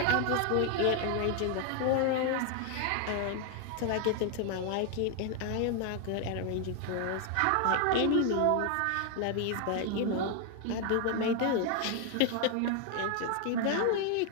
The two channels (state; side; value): different; both; correlation 0.00